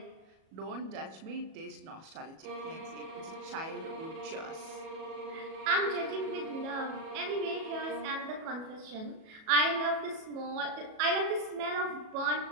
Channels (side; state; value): left; late; 37 ms